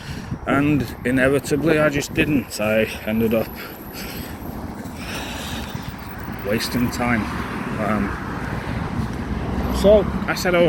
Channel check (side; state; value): both; identical; correlation 1.00